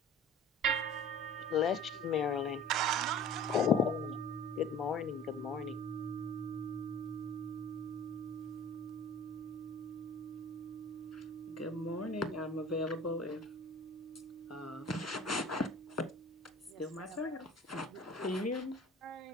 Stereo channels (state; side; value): normal; both; correlation 0.44